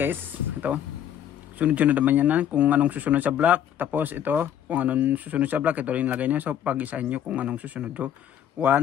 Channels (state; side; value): quieter; right; 10.0 dB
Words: Ito. Sunod-sunod naman yan kung anong susunod sa block. Tapos ito, kung anong susunod sa block, ito rin lagay nyo. So pag-isahin nyo kung anong susunod. 1